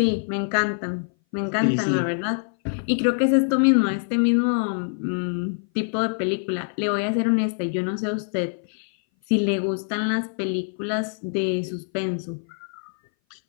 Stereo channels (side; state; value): right; silent; 59 dB below the other